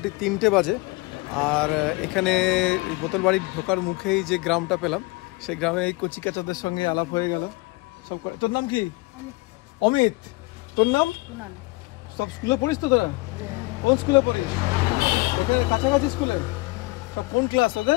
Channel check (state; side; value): quieter; right; 24.1 dB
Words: 3টে বাজে। আর এখানে বোতল বাড়ির ঢোকার মুখেই যে গ্রামটা পেলাম, সেই গ্রামে এই কচিকাচাদের সঙ্গে আলাপ হয়ে গেল। সব তোর নাম কি? অমিত। তোর নাম? সব স্কুলে পড়িস তো তোরা? কোন স্কুলে পড়িস? এখানে কাছাকাছি স্কুলে? সব কোন ক্লাস